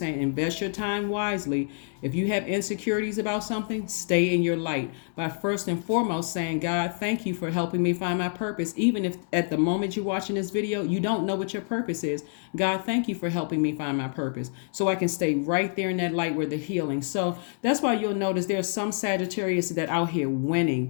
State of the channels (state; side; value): silent; right; 60 dB below the other